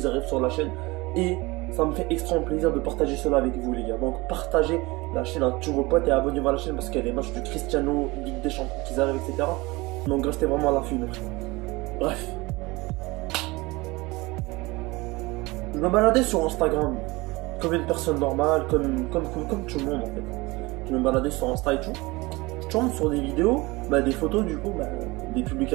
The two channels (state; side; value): quieter; left; 22.8 dB